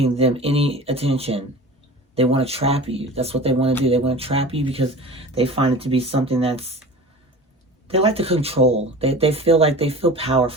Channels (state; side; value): normal; both; correlation 0.37